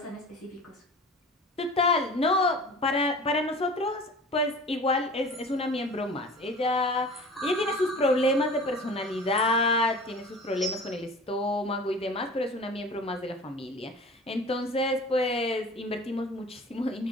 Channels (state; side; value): normal; both; correlation 0.40